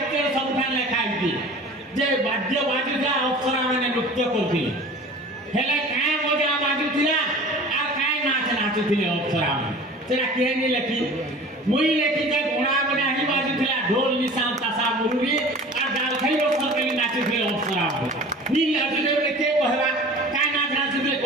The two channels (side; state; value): both; normal; correlation 0.41